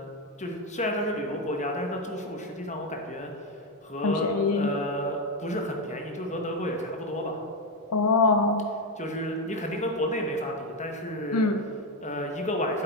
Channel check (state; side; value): normal; both; correlation 0.08